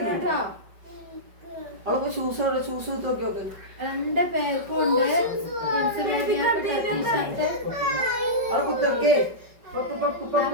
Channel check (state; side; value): late; left; 5.3 ms